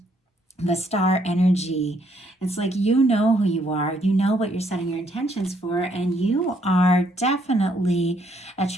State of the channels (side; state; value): both; normal; correlation 0.70